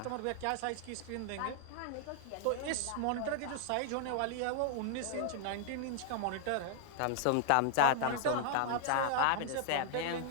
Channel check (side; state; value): both; different; correlation 0.00